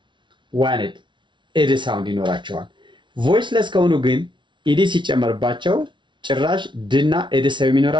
ዋንድ ኤድ ሳውንድ ይኖራቸዋል። ቮይስለስ ከሆኑ ግን ኢዲ ሲጨመርባቸው ጭራሽ ድና ኤድ ሰው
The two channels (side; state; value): left; late; 0.24 ms